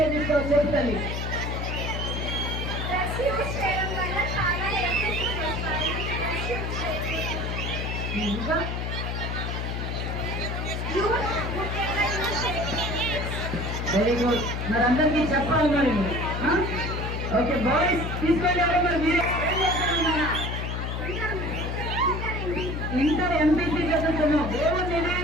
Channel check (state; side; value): noise; left; hum, 3 dB below the sound